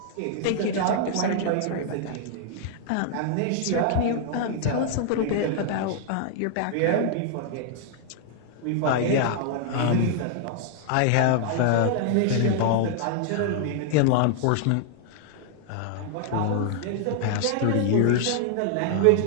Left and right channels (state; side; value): different; both; correlation -0.01